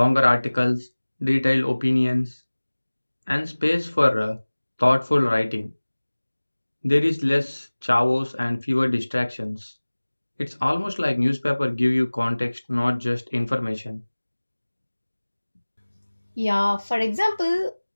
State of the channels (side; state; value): both; inverted; correlation -1.00